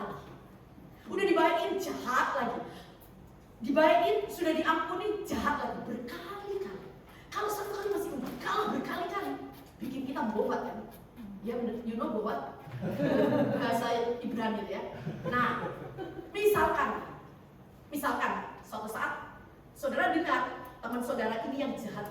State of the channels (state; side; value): identical; both; correlation 1.00